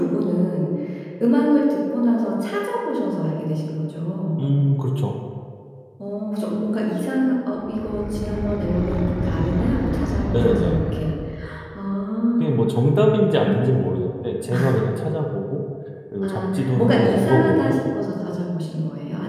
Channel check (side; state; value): both; identical; correlation 1.00